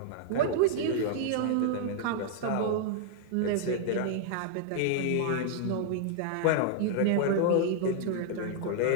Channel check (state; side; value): different; both; correlation -0.01